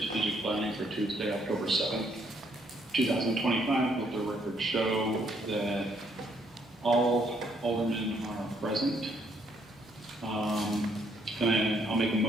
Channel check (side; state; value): both; normal; correlation 0.70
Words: planning for Tuesday, October 7th, 2025. Let the record show that all aldermen are present. And I'll make a